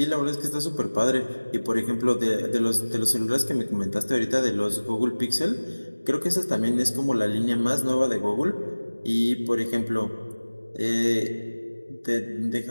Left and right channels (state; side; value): inverted; both; correlation -1.00